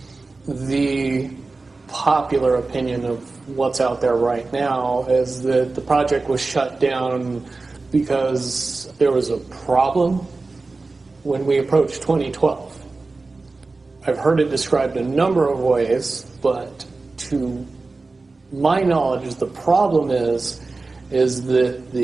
The popular opinion of what's out there right now is that the project was shut down because there was a problem when we approached 2012. I've heard it described a number of ways, but to my knowledge, the problem is that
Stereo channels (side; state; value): left; quieter; 3.6 dB